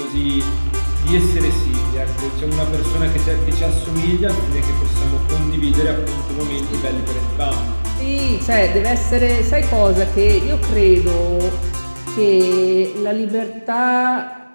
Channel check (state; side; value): inverted; both; correlation -1.00